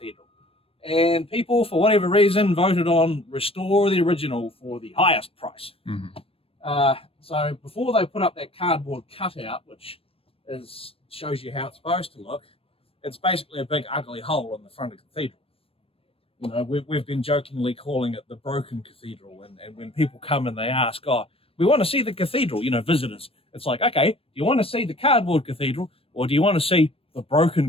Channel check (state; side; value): late; right; 0.28 ms